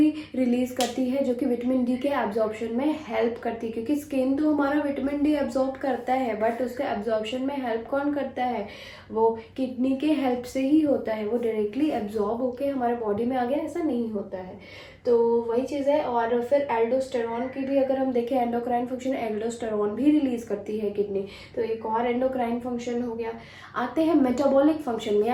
रिलीज करती है, जो कि विटामिन D के एब्जॉर्प्शन में हेल्प करती है, क्योंकि स्किन तो हमारा विटामिन D एब्जॉर्ब करता है, बट उसके एब्जॉर्प्शन में हेल्प कौन करता है, वो किडनी के हेल्प से ही होता है। वो डायरेक्टली एब्जॉर्ब होके हमारे बॉडी में आ गया, ऐसा नहीं होता है। तो वही चीज़ है। और फिर एल्डोस्टेरॉन की भी अगर हम देखें, एंडोक्राइन फंक्शन, एल्डोस्टेरॉन भी रिलीज करती है किडनी, तो एक और एंडोक्राइन फंक्शन हो गया। आते हैं मेटाबॉलिक फंक्शन में,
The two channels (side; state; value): both; identical; correlation 1.00